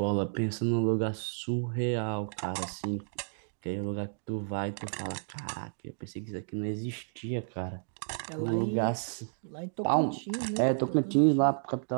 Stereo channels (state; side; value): silent; left; digital silence